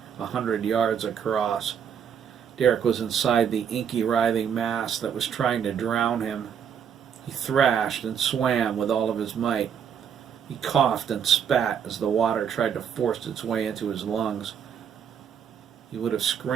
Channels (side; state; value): left; quieter; 7.9 dB